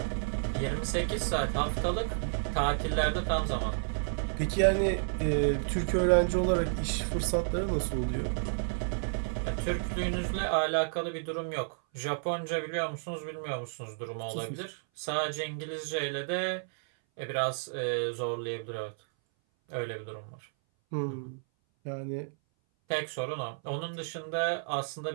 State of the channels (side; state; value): left; silent; 57 dB below the other